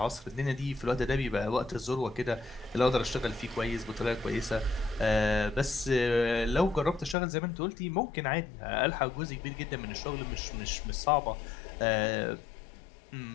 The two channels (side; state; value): right; drops out; at 7.2 s